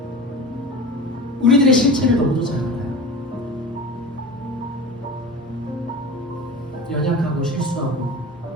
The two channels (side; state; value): both; normal; correlation 0.33